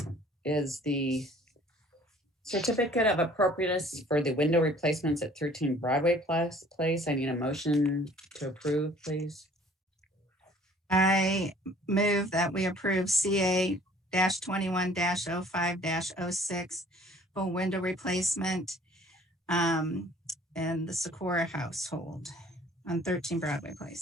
is the certificate of appropriateness for the window replacements at 13 Broadway Place. I need a motion to approve, please. I move that we approve CA-21-05-06 for window replacement in the Socorro household on 13 Broadway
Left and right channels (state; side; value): normal; both; correlation 0.54